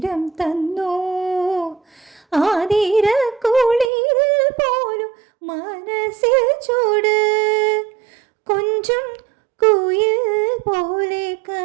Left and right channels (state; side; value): drops out; left; at 3.9 s